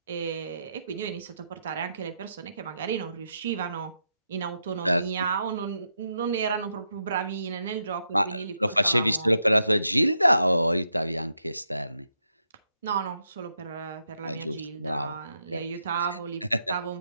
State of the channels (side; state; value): both; inverted; correlation -0.83